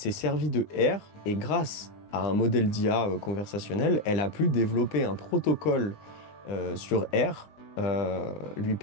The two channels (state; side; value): late; right; 20 ms